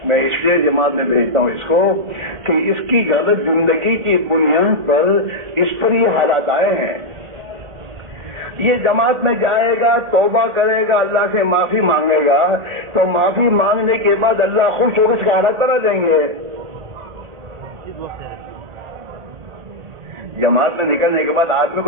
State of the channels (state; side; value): late; left; 1.8 ms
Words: میں اس لیے جماعت میں بھیجتا ہوں اس کو کہ اس کی غلط زندگی کی بنیاد پر اس پر یہ حالات آئے ہیں۔ یہ جماعت میں جائے گا، توبہ کرے گا، اللہ سے معافی مانگے گا، تو معافی مانگنے کے بعد اللہ خوش ہو کر اس کا حالات کرا دیں گے۔ جماعت میں نکلنے کے بعد آدمی